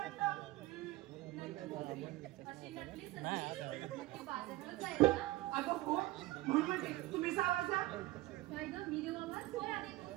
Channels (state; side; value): quieter; left; 18.4 dB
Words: अशी नटली सगळी. ती बाजाराला जायला ना? अगं हो, म्हणून म्हणते तुम्ही सावरचा. काय ग मी देऊ आवाज? होय आधी.